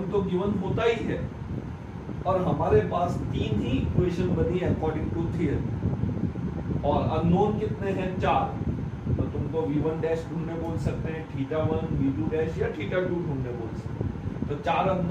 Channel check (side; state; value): both; identical; correlation 1.00